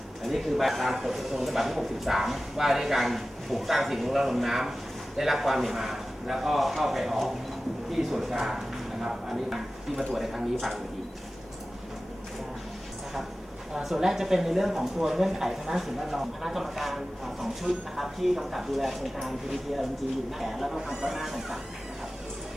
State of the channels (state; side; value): normal; both; correlation 0.96